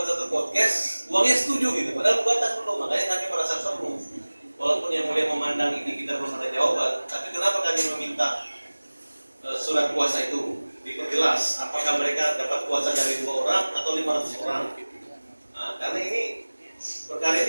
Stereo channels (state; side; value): inverted; both; correlation -1.00